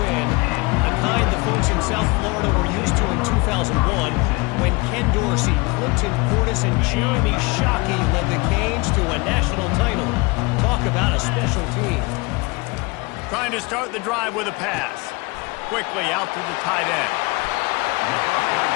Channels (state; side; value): quieter; right; 26.2 dB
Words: the kind the folks in South Florida were used to in 2001 when Ken Dorsey, Clinton Portis, and Jeremy Shockey led the Canes to a national title. Talk about a special team. Trying to start the drive with a pass. Quickly out to the tight end.